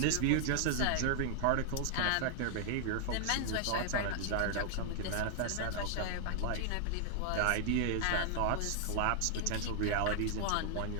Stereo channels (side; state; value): both; different; correlation 0.00